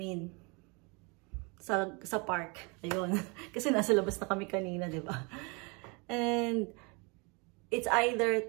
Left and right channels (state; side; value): quieter; left; 30.4 dB